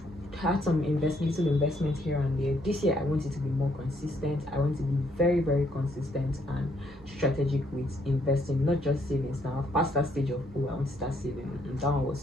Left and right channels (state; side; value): normal; both; correlation 0.70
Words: had some little investment here and there. This year I want it to be more consistent. I want to be very consistent and strategic with investing, not just savings. Now I've passed that stage of, oh, I want to start saving, and that one was